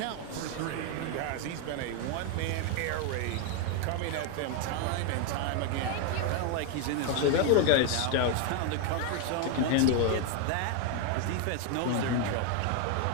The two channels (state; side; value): different; both; correlation 0.01